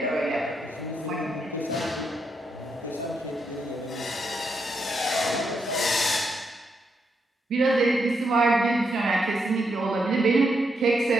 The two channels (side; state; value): both; normal; correlation 0.80